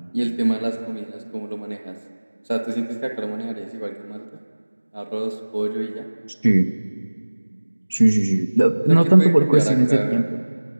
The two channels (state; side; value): inverted; both; correlation -1.00